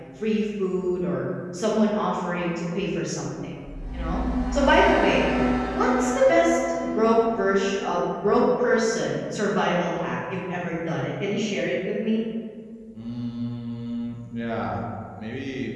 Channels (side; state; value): both; identical; correlation 1.00